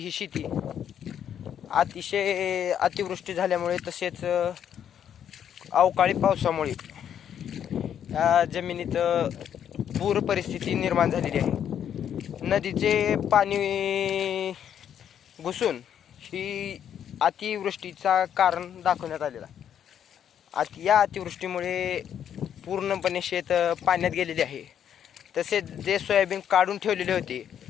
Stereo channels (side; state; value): right; quieter; 9.2 dB